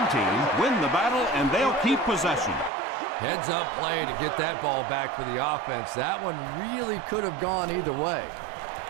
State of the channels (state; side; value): drops out; left; at 2.7 s